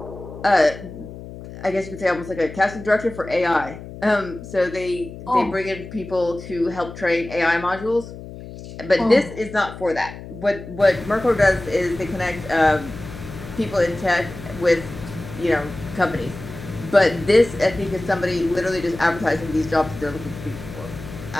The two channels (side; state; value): left; noise; hum, 13 dB below the sound